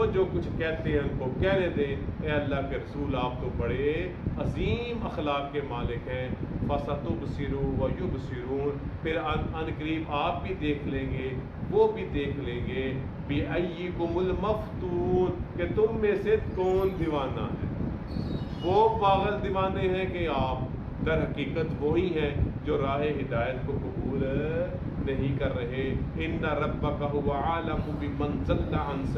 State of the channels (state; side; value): identical; both; correlation 1.00